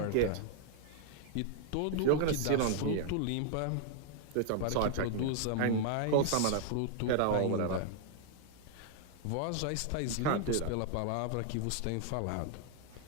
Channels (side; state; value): both; different; correlation -0.01